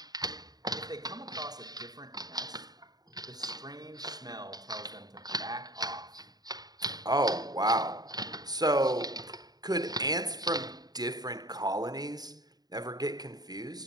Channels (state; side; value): late; left; 0.19 ms